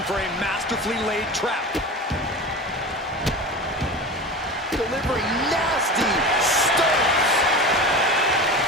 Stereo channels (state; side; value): normal; both; correlation 0.30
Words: for a masterfully laid trap. Delivering nasty stunts.